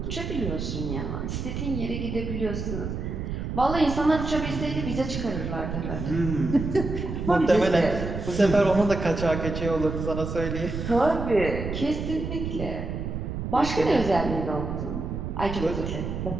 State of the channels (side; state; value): right; noise; rumble, 4 dB below the sound